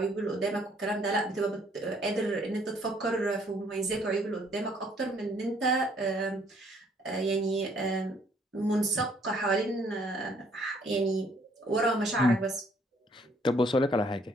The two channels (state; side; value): normal; both; correlation 0.64